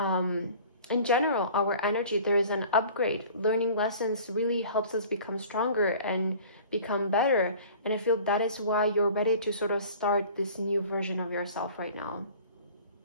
in general, our energy. There is an upgrade. Learning lessons really helps us become stronger and become better, and I feel that is why you're ready to sort of start this new version of yourself right now.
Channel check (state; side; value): inverted; both; correlation -0.46